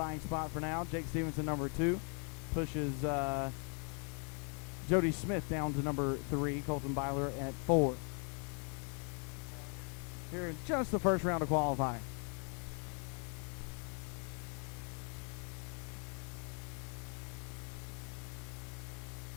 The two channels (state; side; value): quieter; right; 39.1 dB